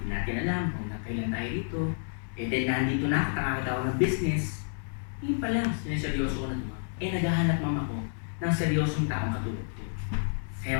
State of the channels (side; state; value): right; silent; digital silence